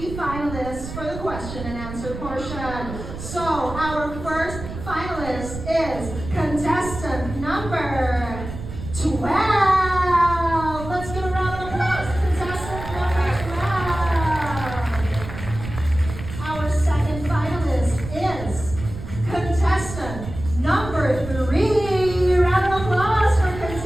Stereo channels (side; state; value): right; noise; rumble, 10 dB below the sound